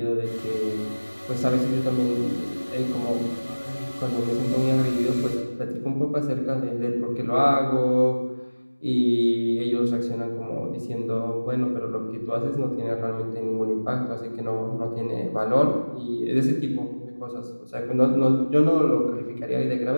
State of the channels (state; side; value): inverted; both; correlation -1.00